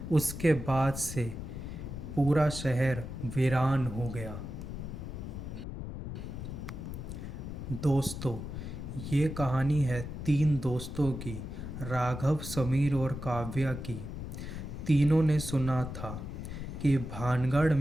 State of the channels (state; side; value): noise; left; rumble, 7 dB below the sound